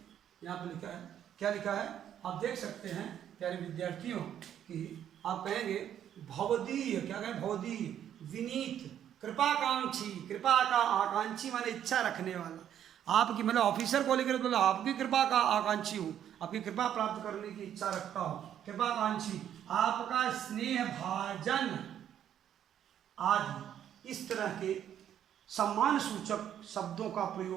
यहाँ पर लिखा है, क्या लिखा है आप देख सकते हैं प्यारे विद्यार्थियों कि आप कहेंगे भवदीय, क्या कहें, भवदीय, विनीत, कृपाकांक्षी, कृपा का आकांक्षी माने इच्छा रखने वाला, आपकी मतलब ऑफिसर को लेकर तो आपकी कृपा का आकांक्षी हूँ, आपकी कृपा प्राप्त करने की इच्छा रखता हूँ, कृपाकांक्षी, आपका स्नेह भाजन आदि। इस तरह के सम्मान सूचक शब्दों का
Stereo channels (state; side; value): quieter; left; 10.1 dB